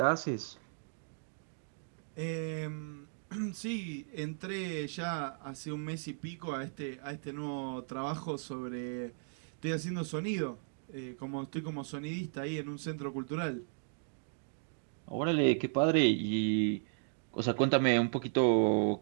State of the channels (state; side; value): silent; left; digital silence